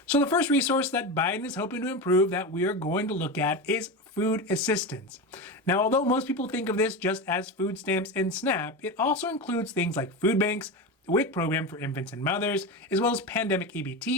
So the first resource that Biden is hoping to improve that we are going to look at is food assistance. Now, although most people think of this just as food stamps and SNAP, it also includes things like food banks, the WIC program for infants and mothers, as well as pandemic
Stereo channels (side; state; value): both; normal; correlation 0.21